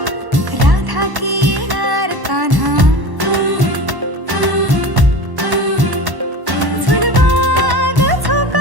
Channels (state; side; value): late; left; 1.1 ms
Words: राधा की येणार कान्हा. झुलवा ग